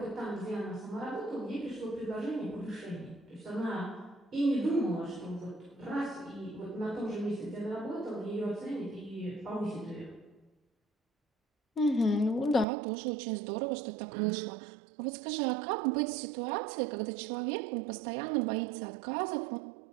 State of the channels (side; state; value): left; drops out; at 12.7 s